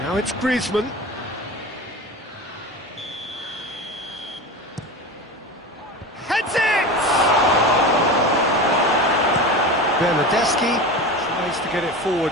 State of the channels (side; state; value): both; normal; correlation 0.28